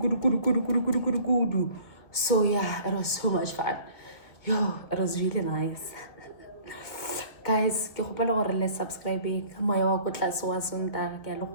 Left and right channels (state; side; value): late; right; 2.2 ms